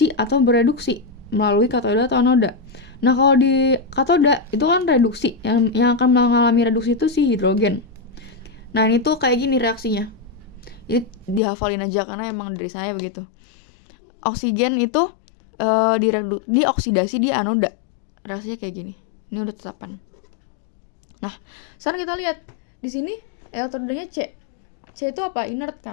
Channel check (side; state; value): right; drops out; at 11.4 s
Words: atau bereduksi melalui katoda atau anoda. Nah, kalau di katoda itu kan reduksi, yang akan mengalami reduksi itu si hidrogen. Nah, ini tuh kayak gini reaksinya. Ini dihafalin aja karena emang dari saya begitu. Oksigen itu dioksidasi di anoda. Reaksinya kayak gini. Ini udah tetapan. Nah, sekarang kita lihat di sini elektrodanya C. C itu apa? Inert